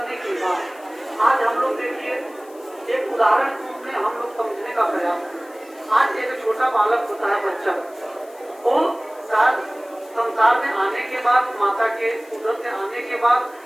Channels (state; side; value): noise; left; hiss, 26 dB below the sound